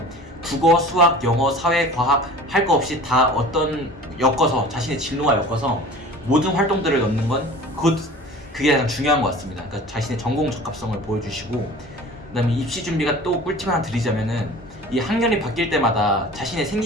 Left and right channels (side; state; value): both; normal; correlation 0.42